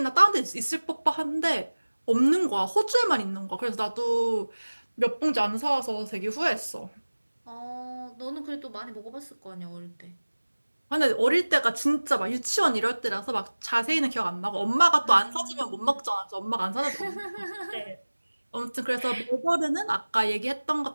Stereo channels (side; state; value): both; inverted; correlation -1.00